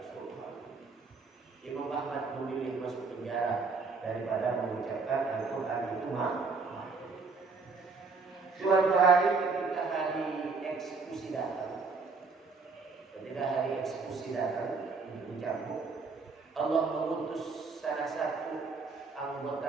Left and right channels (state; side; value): quieter; left; 4.3 dB